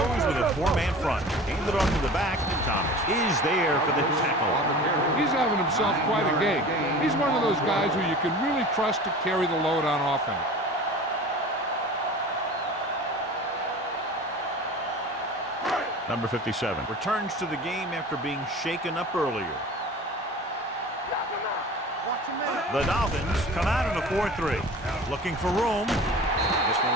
with a four-man front. Handed off to the back. Thomas is there for the tackle. He's having himself quite a game. He's one of those guys who you can really trust to carry the load on offense. Number 57 returns to the game after being shaken up earlier. Watch your man. The Dolphins come out in a 4-3. Looking for room. This one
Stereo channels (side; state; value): both; normal; correlation 0.39